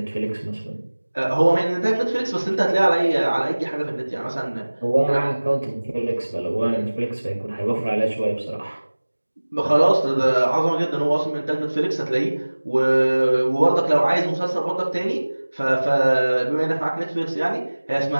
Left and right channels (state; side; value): inverted; both; correlation -1.00